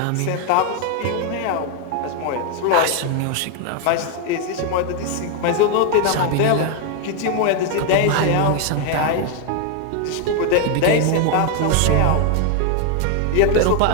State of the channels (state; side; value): different; both; correlation 0.01